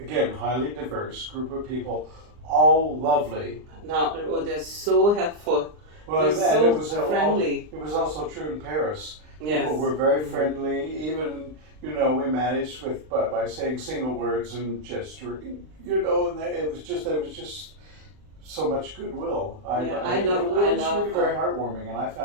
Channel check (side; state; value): left; late; 39 ms